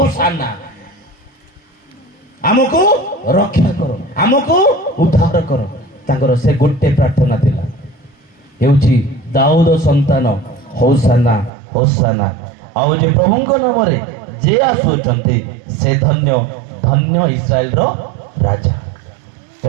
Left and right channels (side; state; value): left; drops out; at 11.5 s